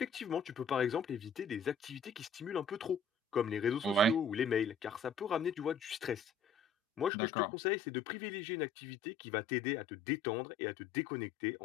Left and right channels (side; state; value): right; drops out; at 7.1 s